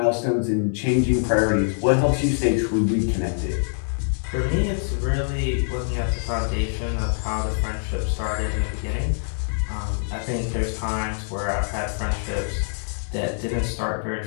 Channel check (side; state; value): right; silent; digital silence